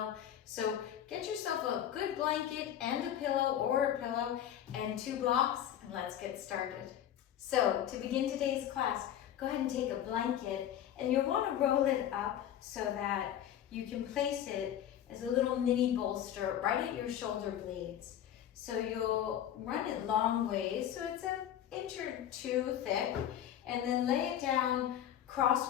So get yourself a good blanket and a pillow and 2 blocks, and let's get started. So to begin today's class, go ahead and take a blanket, and you'll want to roll it up so that you can place it as a little mini bolster right at your shoulder blades. So you'll run it long ways, so it's an inch or 2 thick, and then lay it down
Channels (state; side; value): quieter; right; 10.7 dB